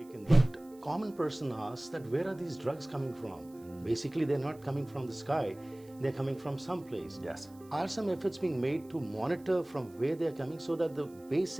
taken. But common person asks that where are these drugs coming from? Basically, they're not coming from the sky. They're coming from someplace. Yes. Are some efforts being made to monitor from where they're coming so that the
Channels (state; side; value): noise; right; hiss, 27 dB below the sound